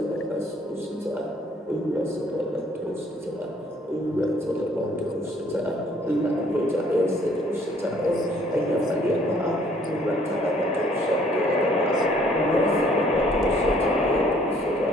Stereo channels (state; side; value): normal; both; correlation 0.61